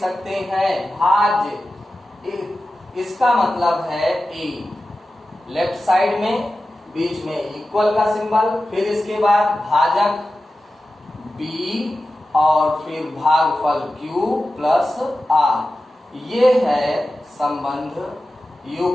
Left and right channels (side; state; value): both; normal; correlation 0.94